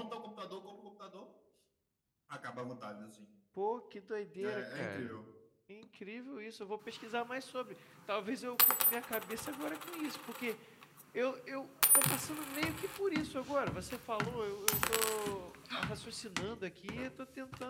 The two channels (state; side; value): identical; both; correlation 1.00